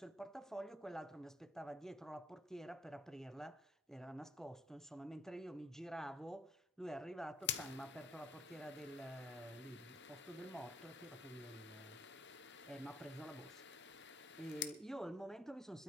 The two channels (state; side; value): normal; both; correlation 0.66